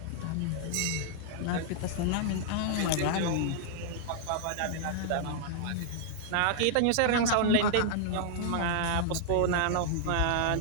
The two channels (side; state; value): both; different; correlation -0.01